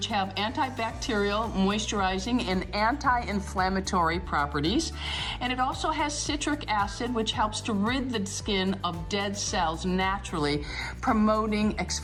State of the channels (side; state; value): both; identical; correlation 1.00